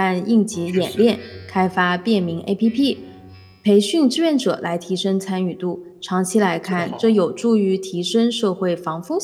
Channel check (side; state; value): both; identical; correlation 1.00